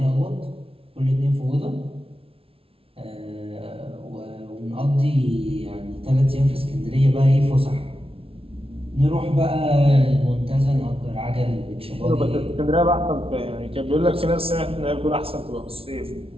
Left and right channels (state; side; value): late; left; 0.27 ms